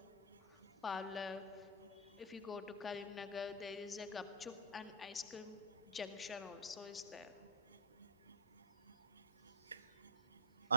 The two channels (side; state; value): both; normal; correlation -0.02